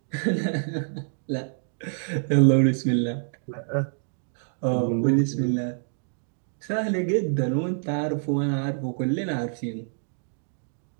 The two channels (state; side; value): silent; left; digital silence